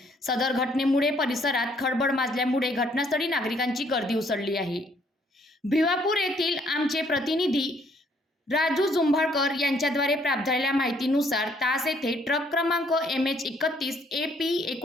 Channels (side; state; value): both; normal; correlation 0.65